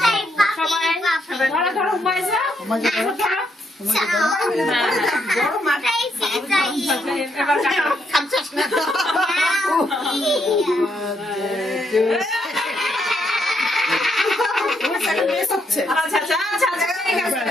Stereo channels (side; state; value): both; normal; correlation 0.77